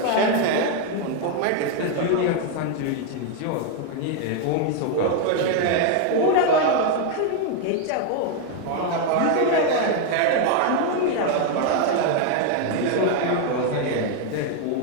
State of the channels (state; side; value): different; both; correlation 0.01